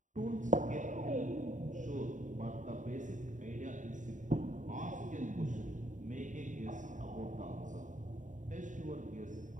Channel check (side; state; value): left; late; 0.36 ms